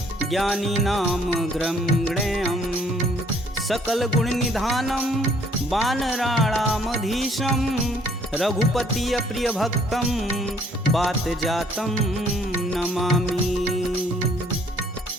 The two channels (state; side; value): normal; both; correlation 0.62